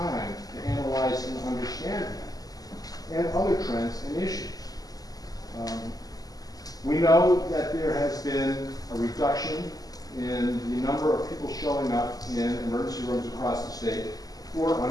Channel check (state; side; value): late; right; 0.18 ms